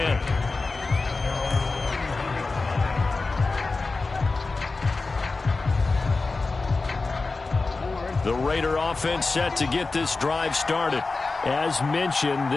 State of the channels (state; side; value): quieter; right; 3.7 dB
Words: The Raider offense set to get this drive started. As mentioned,